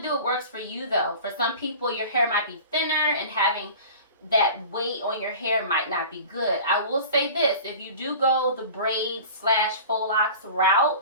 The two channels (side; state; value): both; inverted; correlation -0.40